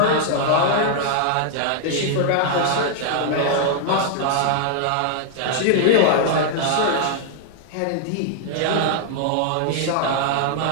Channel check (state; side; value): different; both; correlation 0.00